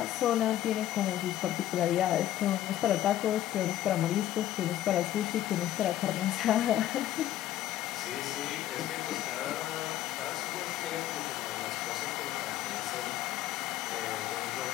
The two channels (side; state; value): right; quieter; 12.9 dB